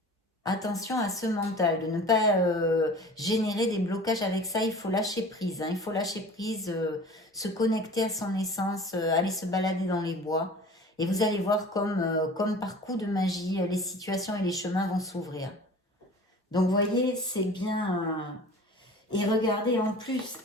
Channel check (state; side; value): normal; both; correlation 0.42